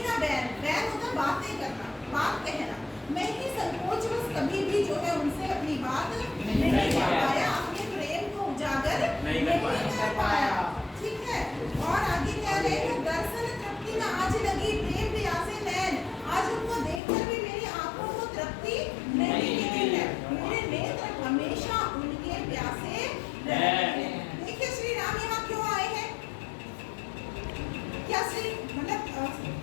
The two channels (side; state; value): right; drops out; at 17.0 s